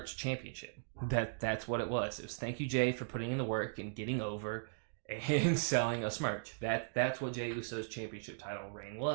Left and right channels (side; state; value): left; silent; digital silence